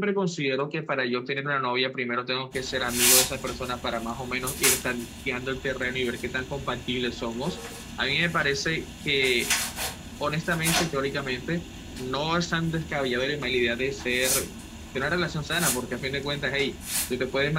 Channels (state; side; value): identical; both; correlation 1.00